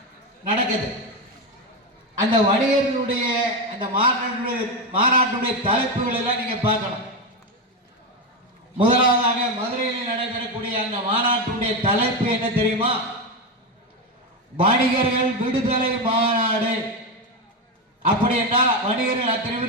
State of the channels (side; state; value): both; normal; correlation 0.13